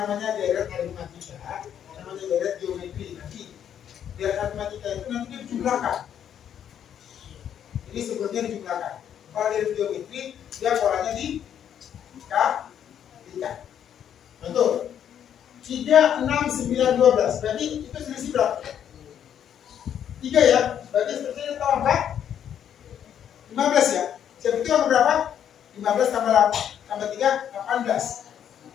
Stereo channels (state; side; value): quieter; right; 9.4 dB